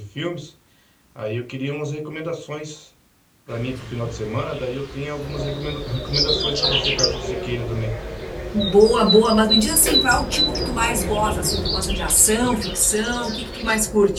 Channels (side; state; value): both; identical; correlation 1.00